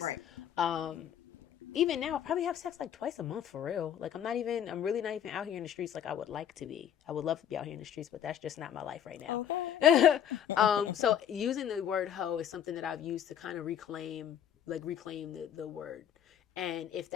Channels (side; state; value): right; quieter; 9.5 dB